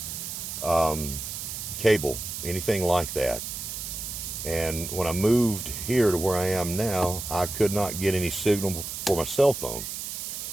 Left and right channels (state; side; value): noise; right; hiss, 6 dB below the sound